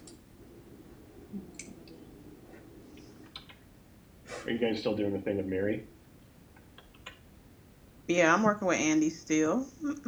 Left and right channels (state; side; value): identical; both; correlation 1.00